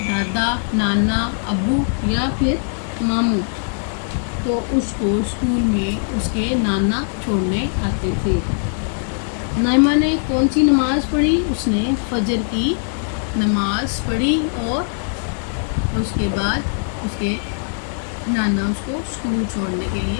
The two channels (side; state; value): right; silent; digital silence